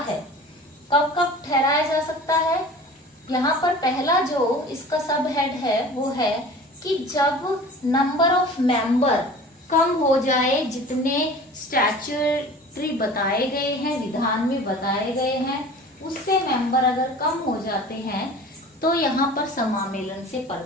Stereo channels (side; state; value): both; normal; correlation 0.41